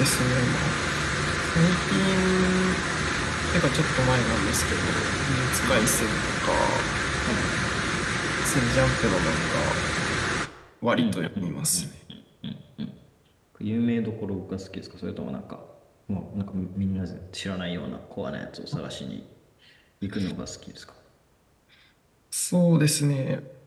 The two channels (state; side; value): identical; both; correlation 1.00